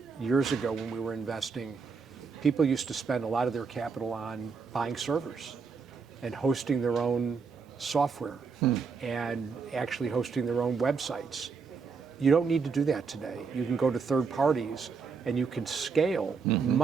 years ago when we were investing, people used to spend a lot of their capital on buying servers and hosting their own software and actually hosting their own websites. You don't need to do that today. You can go to third parties and you can scale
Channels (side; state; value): left; quieter; 5.3 dB